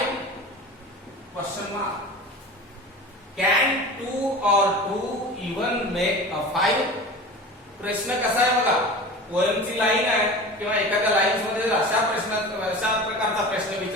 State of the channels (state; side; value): normal; both; correlation 0.35